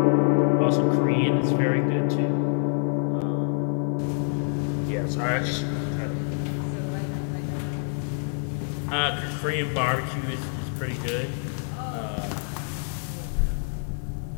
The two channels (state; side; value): silent; right; 61 dB below the other